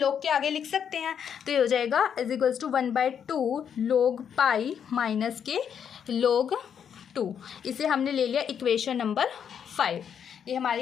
के आगे लिख सकते हैं, तो ये हो जाएगा is equals to 1/2 log π minus के log 2। इसे हमने ले लिया इक्वेशन नंबर 5। ये हमारी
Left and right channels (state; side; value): quieter; right; 8.0 dB